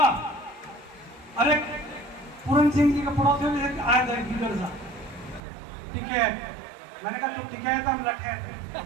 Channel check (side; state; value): left; drops out; at 5.4 s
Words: अरे पूरन सिंह जी के पड़ोसी में से आया था लीडर साहब, टिकैत। मैंने कहा तू टिकैत, हम लठे थे।